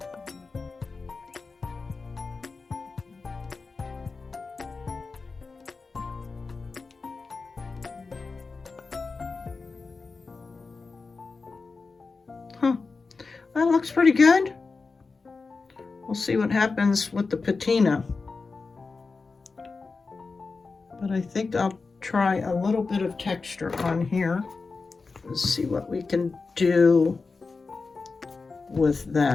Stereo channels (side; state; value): right; quieter; 4.2 dB